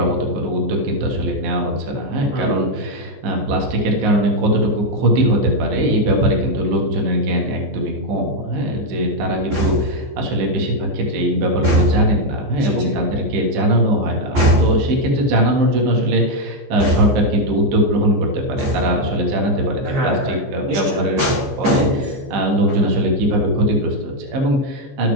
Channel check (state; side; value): late; left; 15 ms